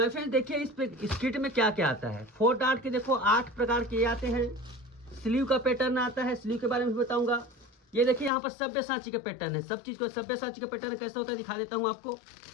फ्रेंड्स देखिए इस किट में क्या क्या आता है। 4 डॉट के देखो 8 प्रकार के आते हैं। स्लीव का पैटर्न आता है, स्लीव के बारे में भी बताऊंगा। ये देखिए यहाँ पर सभ्यसाची का पैटर्न है। सब चीज को सभ्यसाची का पैटर्न कैसा होता है दिखा देता हूँ आपको।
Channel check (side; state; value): right; drops out; at 8.3 s